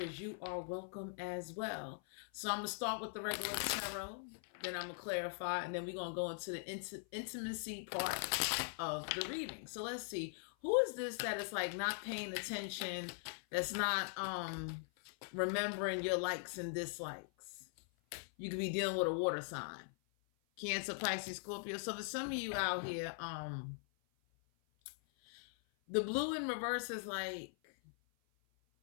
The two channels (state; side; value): silent; right; 50 dB below the other